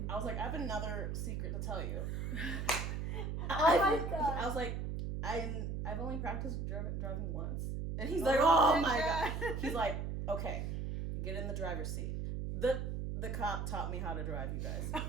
I was like, "I have another secret to tell you." Oh my god. I was like, I've only practiced driving once. And he's like, "Oh my god." He's like, Okay, get in the driver's seat. The cop taught me how to drive, you guys.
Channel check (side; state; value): right; noise; hum, 2 dB below the sound